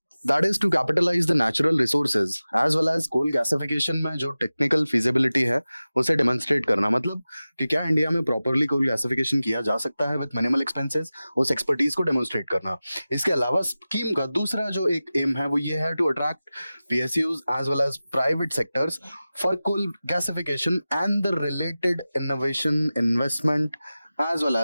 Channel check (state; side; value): inverted; both; correlation -0.96